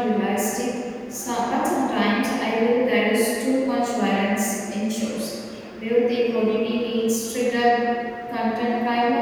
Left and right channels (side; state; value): both; identical; correlation 1.00